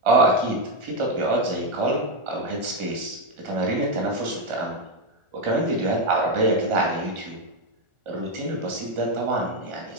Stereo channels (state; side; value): late; left; 1.4 ms